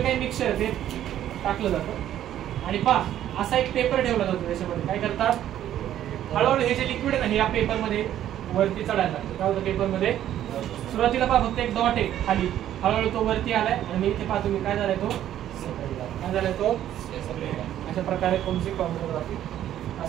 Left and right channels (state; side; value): quieter; left; 11.6 dB